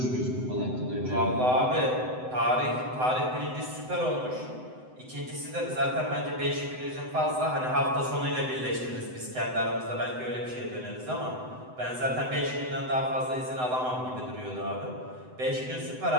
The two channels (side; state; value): left; late; 7.9 ms